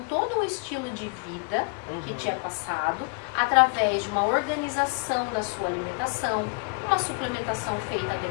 todo um estilo de vida que te é passado, através de uma organização da sua alimentação, uma suplementação feita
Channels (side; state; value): right; quieter; 36.6 dB